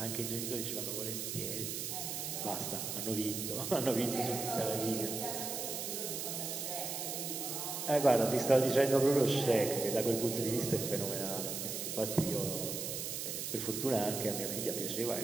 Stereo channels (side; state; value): right; noise; hiss, 4 dB below the sound